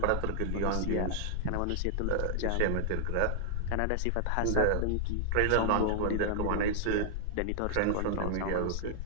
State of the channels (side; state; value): both; different; correlation -0.01